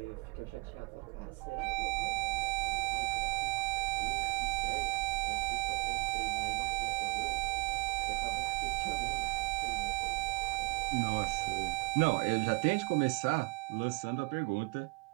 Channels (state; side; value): quieter; left; 29.9 dB